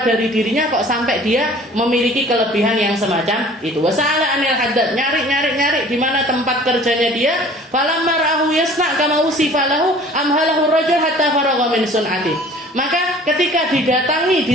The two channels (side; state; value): both; normal; correlation 0.48